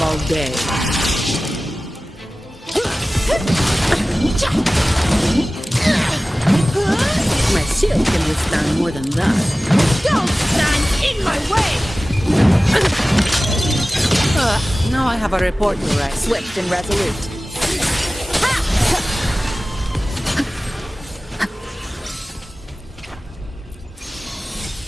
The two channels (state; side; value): normal; both; correlation 0.97